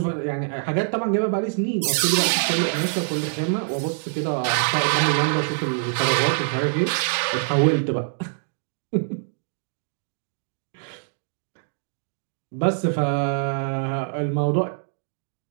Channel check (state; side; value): silent; left; digital silence